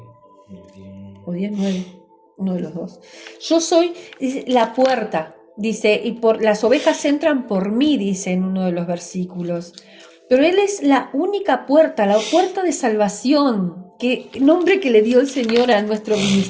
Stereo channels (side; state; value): both; identical; correlation 1.00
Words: O 10:9, uno de los dos. Yo soy la puerta, dice, y las ovejas entran por mí, dice en uno de los versículos. Pero Él es la única puerta, la puerta de salvación, nombre que le dio el Señor a nuestro